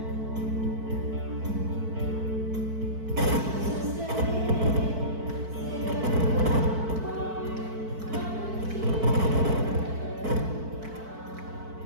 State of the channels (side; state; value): left; late; 4.5 ms